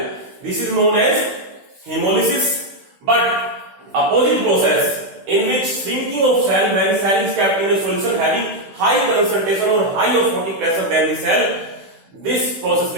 this is known as hemolysis. But opposite process in which shrinking of cell when cell is kept in a solution having high concentration or high osmotic pressure than the cell, this process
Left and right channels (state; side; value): late; left; 16 ms